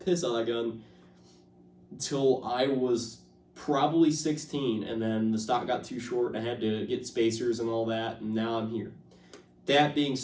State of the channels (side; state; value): both; identical; correlation 1.00